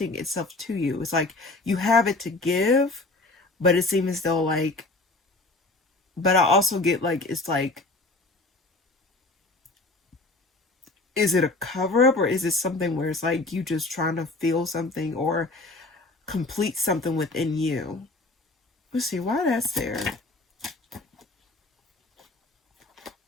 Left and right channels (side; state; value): right; quieter; 3.1 dB